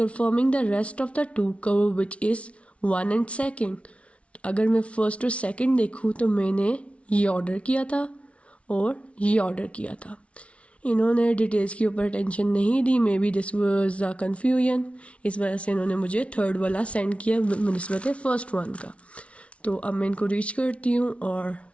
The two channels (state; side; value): late; right; 0.062 ms